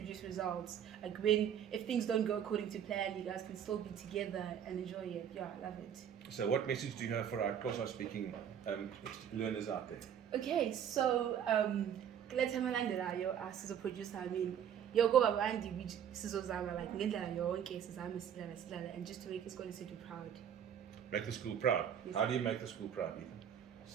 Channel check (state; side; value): quieter; left; 9.0 dB